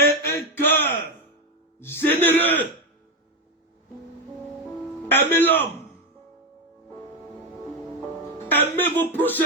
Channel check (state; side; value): normal; both; correlation 0.11